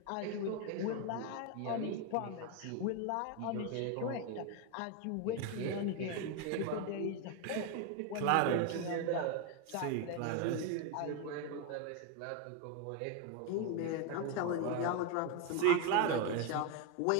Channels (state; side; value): different; both; correlation 0.02